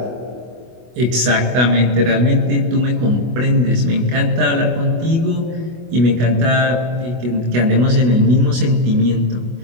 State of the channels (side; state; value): left; late; 24 ms